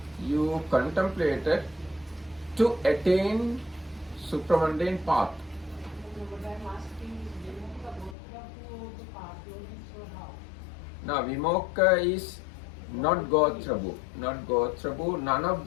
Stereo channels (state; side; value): drops out; right; at 8.2 s